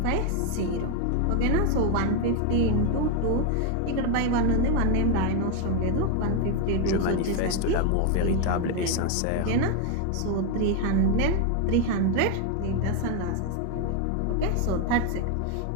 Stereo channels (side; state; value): both; different; correlation 0.01